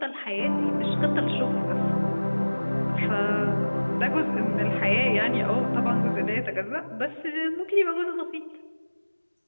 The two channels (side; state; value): both; inverted; correlation -1.00